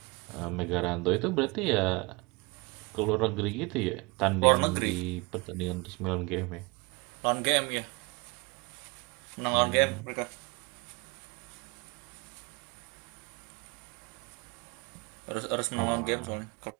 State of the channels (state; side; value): quieter; left; 27.3 dB